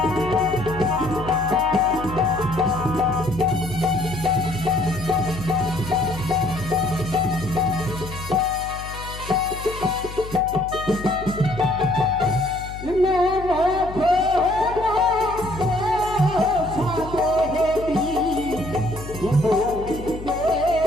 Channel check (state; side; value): noise; left; hum, 11 dB below the sound